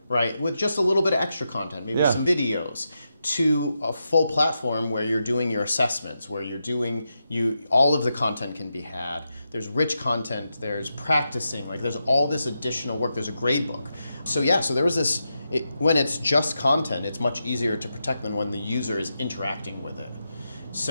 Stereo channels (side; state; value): both; inverted; correlation -0.87